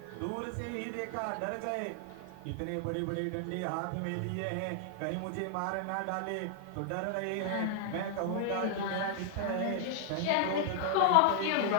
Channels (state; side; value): different; both; correlation 0.00